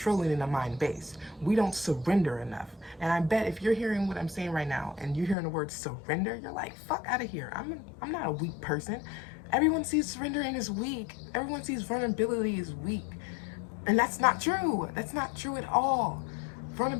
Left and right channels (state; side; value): drops out; right; at 5.4 s